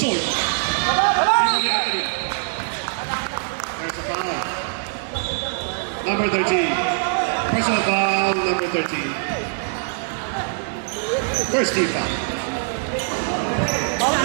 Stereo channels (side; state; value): left; silent; digital silence